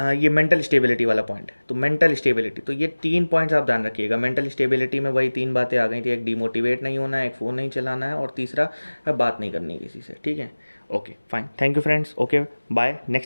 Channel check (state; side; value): inverted; both; correlation -1.00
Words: मेंटल स्टेबिलिटी वाला पॉइंट है, तो मेंटल स्टेबिलिटी, तो ये 3 पॉइंट्स आप ध्यान रखिएगा। मेंटल स्टेबिलिटी में वही 3 बातें आ गई थी, एक डिमोटिवेट नहीं होना है, एक फ़ोन नहीं चलाना है, और तीसरा बात नहीं करनी किसी से, ठीक है। Okay fine, thank you friends, okay bye,